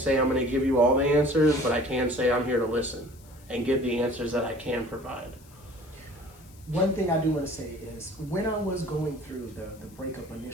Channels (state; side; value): noise; left; hiss, 26 dB below the sound